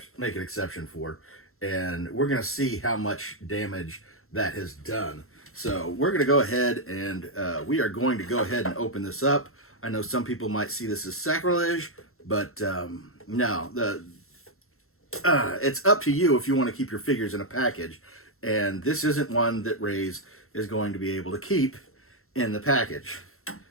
an exception for. And we're going to see how much damage that has done. So we're going to go ahead and we are going to go ahead and open this up. I know some people might see this as sacrilege, but no, it's up to you if you want to keep your figures in a package. And this isn't one that Raze is going to be able to keep in the package,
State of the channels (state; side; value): late; right; 0.62 ms